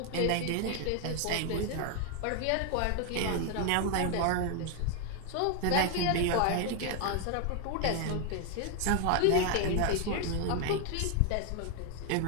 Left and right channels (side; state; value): both; different; correlation 0.01